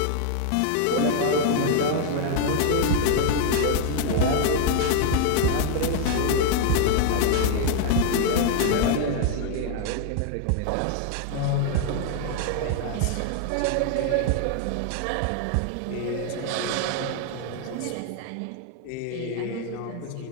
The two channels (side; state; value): both; different; correlation 0.00